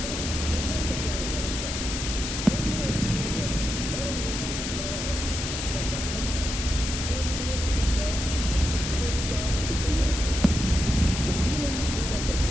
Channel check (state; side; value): noise; left; hiss, 4 dB below the sound